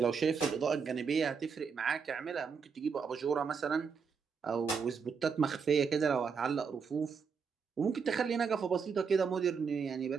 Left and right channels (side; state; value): left; quieter; 5.9 dB